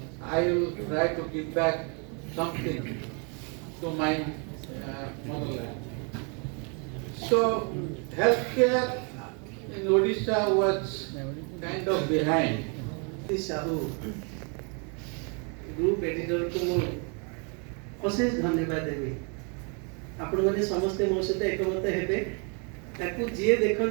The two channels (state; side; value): quieter; left; 36.2 dB